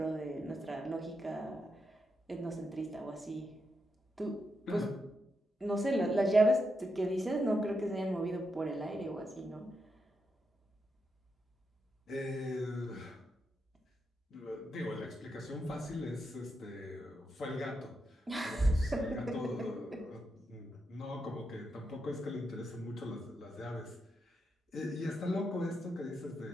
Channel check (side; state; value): both; normal; correlation 0.84